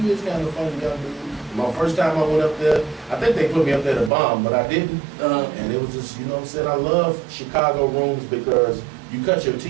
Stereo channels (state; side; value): drops out; left; at 4.1 s